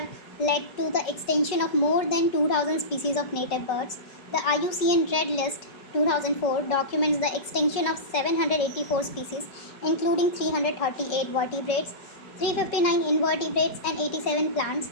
led to the extinction of more than 2,000 species of native birds. The IUCN Red List 2004 documents the extinction of 784 species, including 338 vertebrates, 359 invertebrates, and 87 plants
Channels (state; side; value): late; right; 5.0 ms